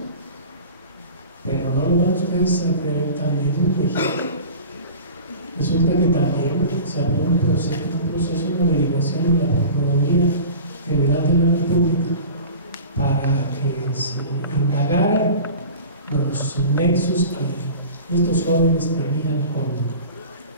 pero no lo van ustedes a creer, también en México. Resulta que también se abrió un proceso de averiguación en la Procuraduría General de la República para que se indagaran los nexos que estos jóvenes tenían con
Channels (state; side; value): inverted; both; correlation -0.37